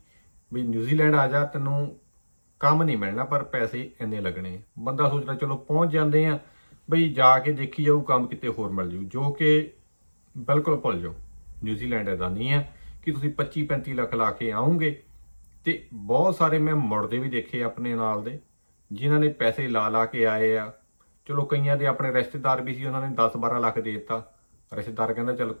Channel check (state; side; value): inverted; both; correlation -1.00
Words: ਵੀ ਨਿਊਜ਼ੀਲੈਂਡ ਆ ਜਾ, ਤੈਨੂੰ ਕੰਮ ਨਹੀਂ ਮਿਲਣਾ ਪਰ ਪੈਸੇ ਇੰਨੇ ਲੱਗਣੇ। ਬੰਦਾ ਸੋਚਦਾ ਚਲੋ ਪਹੁੰਚ ਜਾਂਦੇ ਆ ਬਈ, ਜਾ ਕੇ ਦੇਖੀ ਜਾਊ ਕੰਮ ਕਿਤੇ ਹੋਰ ਮਿਲ ਜੂ, ਜੋ ਕਿ ਬਿਲਕੁਲ ਭੁੱਲ ਜਾਓ। ਨਿਊਜ਼ੀਲੈਂਡ ਇੱਦਾਂ ਨਹੀਂ ਹੈ ਕਿ ਤੁਸੀਂ 25-35 ਲੱਖ ਲਾ ਕੇ ਆਉਂਗੇ। ਤੇ ਬਹੁਤ ਸਾਰੇ ਮੈਂ ਮੁੜਦੇ ਵੀ ਦੇਖੇ ਆਪਣੇ ਨਾਲ ਦੇ, ਜਿਨ੍ਹਾਂ ਨੇ ਪੈਸੇ ਲਾ ਲਾ ਕੇ ਆਏ ਆ। ਚਲੋ ਕਈਆਂ ਦੇ ਆਪਣੇ ਰਿਸ਼ਤੇਦਾਰ ਵੀ ਸੀ, ਉਹਨਾਂ ਨੇ 10-12 ਲੱਖ ਦੇ ਦਿੱਤਾ। ਰਿਸ਼ਤੇਦਾਰ ਕਹਿੰਦਾ ਚੱਲ